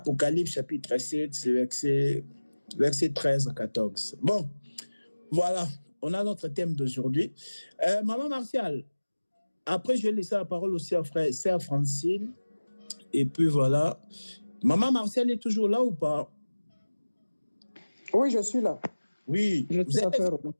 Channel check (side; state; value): both; inverted; correlation -1.00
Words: chapitre 7, c'est verset 13 à 14. Bon, voilà, on a notre thème d'aujourd'hui. Maman Martial, après je vais laisser la parole aussi à sœur Francine. Et puis voilà. Maman Martial est toujours là ou pas? Oui, je suis là. Oui. Je suis là.